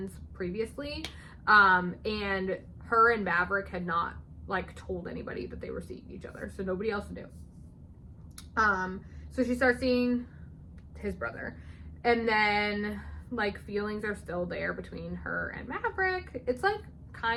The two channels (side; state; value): both; identical; correlation 1.00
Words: previously, and her and Maverick had not like told anybody that they were seeing each other, so nobody else knew. So she starts seeing his brother, and then like feelings are still there between her and Maverick. It's like